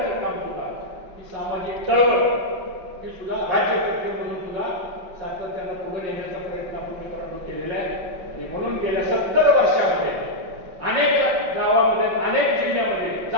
काम सुद्धा, ही सामाजिक चळवळ ही सुद्धा राज्यकर्ते म्हणून सुद्धा सातत्यानं पुढे नेण्याचा प्रयत्न आपण मित्रांनो केलेला आहे. आणि म्हणून गेल्या 70 वर्षामध्ये अनेक गावामध्ये, अनेक जिल्ह्यामध्ये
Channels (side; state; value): left; late; 5.4 ms